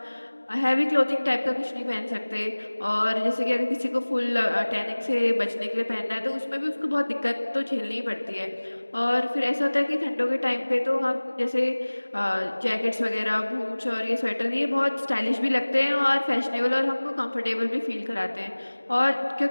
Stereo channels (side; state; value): both; inverted; correlation -1.00